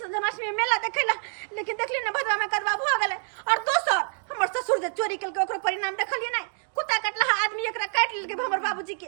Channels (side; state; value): left; silent; 60 dB below the other